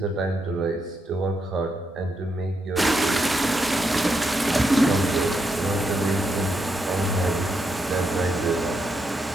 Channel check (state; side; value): normal; both; correlation 0.81